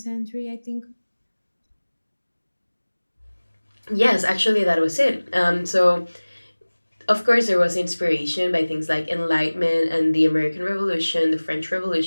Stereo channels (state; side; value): inverted; both; correlation -1.00